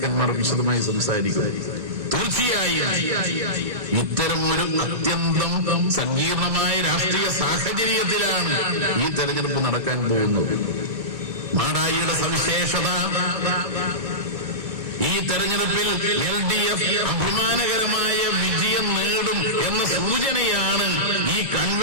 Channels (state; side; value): late; left; 1.7 ms